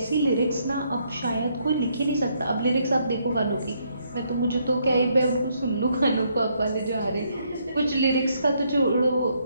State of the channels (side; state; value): both; inverted; correlation -0.72